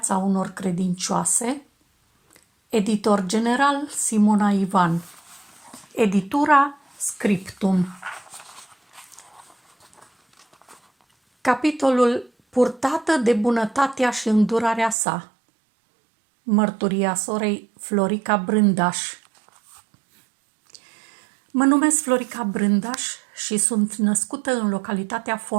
unor credincioase. Editor general Simona Ivan. Editura Scriptum. Capitolul Purtată de bunătatea și îndurarea sa. Mărturia sorei Florica Brândaș. Mă numesc Florica Brândaș și sunt născută în localitatea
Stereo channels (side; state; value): left; drops out; at 15.0 s